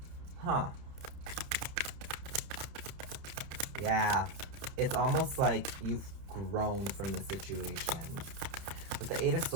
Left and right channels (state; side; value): late; left; 30 ms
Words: Huh. Yeah, it's almost like you've grown from the situation. With the Eight of